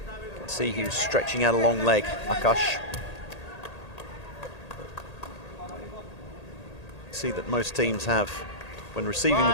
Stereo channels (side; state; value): right; late; 1.8 ms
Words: See, he was stretching out a long leg, Akash. See that most teams have, when receiving the